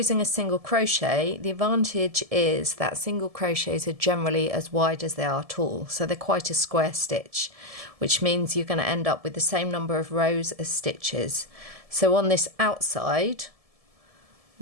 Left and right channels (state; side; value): late; left; 1.7 ms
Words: a single crochet, the advantage is that single crochets are generally as wide as they are tall, so they're quite a square stitch, which means you're going to end up with the same number of rows as stitches. So on this outside,